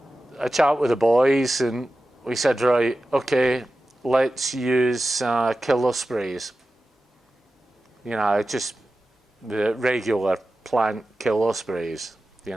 chat with the boys, and we said, right, okay, let's use killer sprays. Just the regular plant killer sprays,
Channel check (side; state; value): both; normal; correlation 0.94